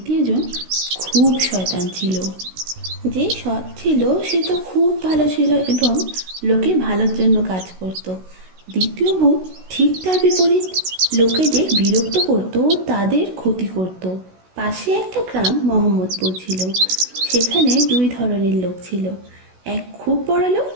খুব শয়তান ছিল। যে সৎ ছিল সে তো খুব ভালো ছিল এবং লোকের ভালোর জন্য কাজ করত। দ্বিতীয় ভূত ঠিক তার বিপরীত, লোকেদের বিরক্ত করত ও তাদের ক্ষতি করত। পাশে একটা গ্রাম মোহাম্মদপুর ছিল। সেখানে দুই ধরনের লোক ছিল, এক খুব বড় লোক,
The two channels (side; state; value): left; late; 16 ms